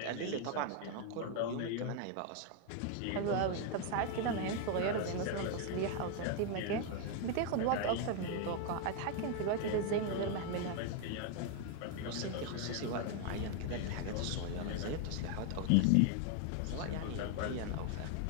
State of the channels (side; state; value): both; different; correlation 0.00